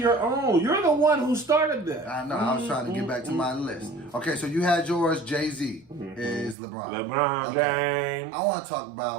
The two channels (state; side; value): drops out; left; at 6.6 s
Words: own. You're the one who started that. I know. I was trying to get back to my list. Okay, so you had yours. Jay-Z is LeBron. LeBron James. I want to talk